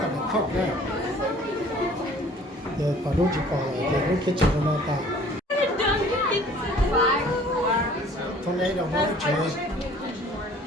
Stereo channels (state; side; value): normal; both; correlation 0.52